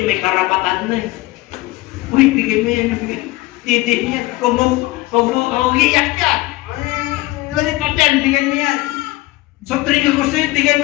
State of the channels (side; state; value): right; quieter; 19.6 dB